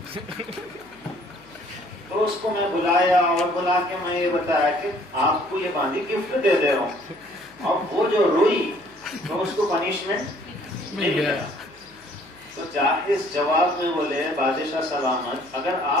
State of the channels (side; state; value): left; noise; hum, 26 dB below the sound